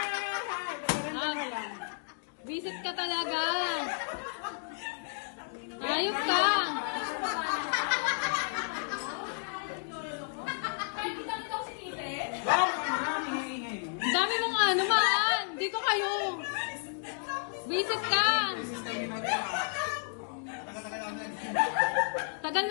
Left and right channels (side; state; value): right; silent; digital silence